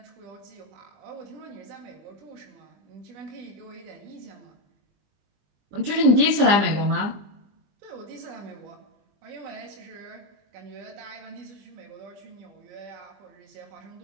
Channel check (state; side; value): late; left; 20 ms